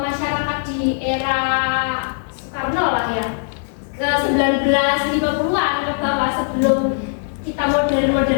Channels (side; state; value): right; silent; digital silence